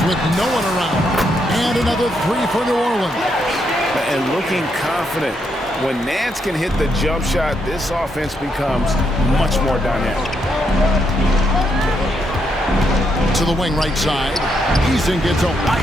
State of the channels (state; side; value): normal; both; correlation 0.78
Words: with no one around. And another 3 for New Orleans. And looking confident. When Nance can hit the jump shot, this offense becomes much more dynamic. To the wing right side. Easton gets a